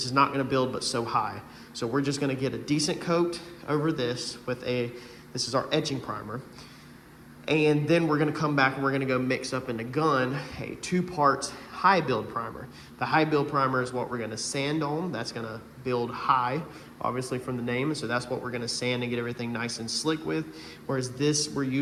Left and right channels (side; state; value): both; identical; correlation 1.00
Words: is not going to build but so high. So we're just going to get a decent coat over this with this is our etching primer. And then we're going to come back and we're going to go mix up in the gun a 2 parts high build primer. The high build primer is what we're going to sand on. That's going to build high, obviously from the name. So that's what we're going to sand and get everything nice and slick with. Whereas this, we're